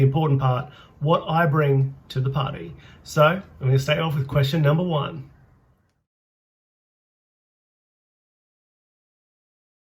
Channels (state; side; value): identical; both; correlation 1.00